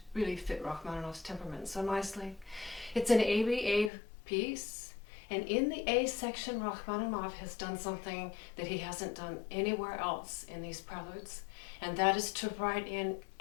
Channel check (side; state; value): right; drops out; at 3.9 s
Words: really fit Rachmaninoff's temperament so nicely. It's an ABA piece, and in the A section, Rachmaninoff has done something that he hasn't done anywhere else in these preludes, and that is to write in